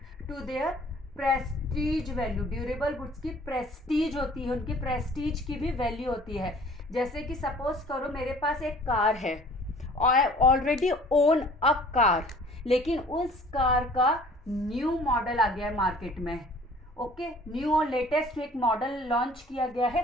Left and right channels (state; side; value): normal; both; correlation 0.51